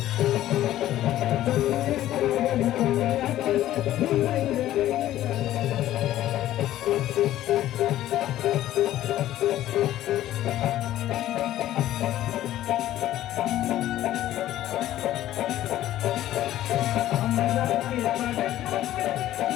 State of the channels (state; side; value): quieter; right; 13.6 dB